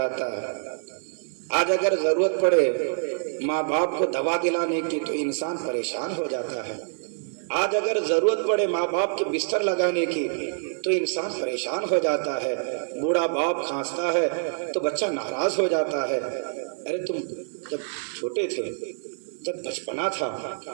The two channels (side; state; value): left; silent; 56 dB below the other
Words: ہے۔ آج اگر ضرورت پڑے ماں باپ کو دوا دلانے کی تو انسان پریشان ہو جاتا ہے۔ آج اگر ضرورت پڑے ماں باپ کے بستر لگانے کی تو انسان پریشان ہو جاتا ہے۔ بوڑھا باپ کھانستا ہے تو بچہ ناراض ہو جاتا ہے۔ ارے تم جب چھوٹے تھے، جب بچپنا تھا،